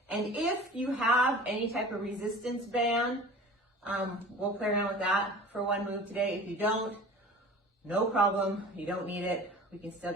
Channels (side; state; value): both; normal; correlation 0.41